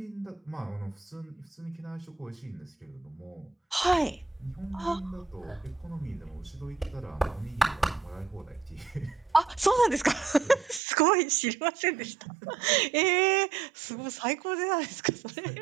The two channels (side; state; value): left; drops out; at 10.8 s